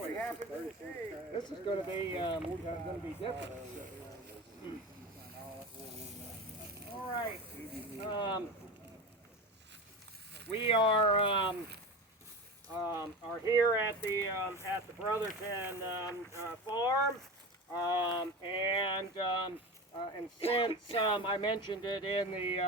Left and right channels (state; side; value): normal; both; correlation 0.28